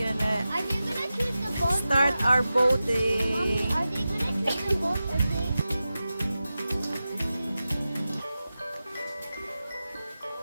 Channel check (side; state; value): both; inverted; correlation -0.93